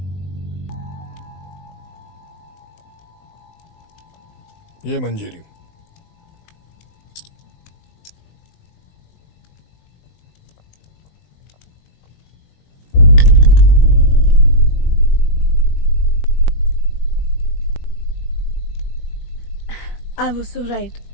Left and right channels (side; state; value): right; late; 20 ms